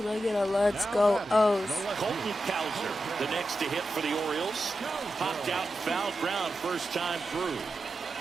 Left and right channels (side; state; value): both; normal; correlation 0.90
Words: I get a let's go, O's? Colton Cowser, the next to hit for the Orioles. Popped out and fouled ground first time through.